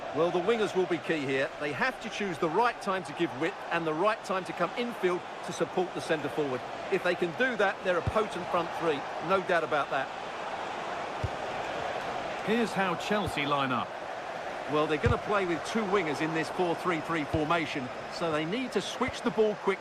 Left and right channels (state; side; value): identical; both; correlation 1.00